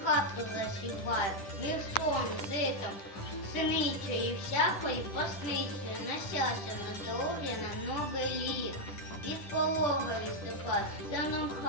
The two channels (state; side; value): late; right; 10 ms